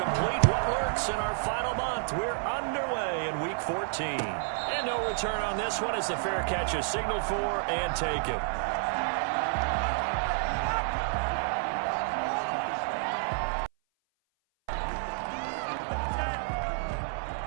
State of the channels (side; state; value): left; silent; 56 dB below the other